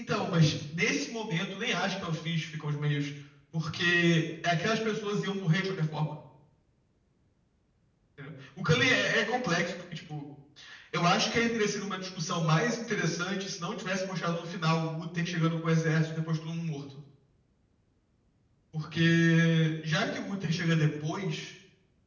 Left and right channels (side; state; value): both; identical; correlation 1.00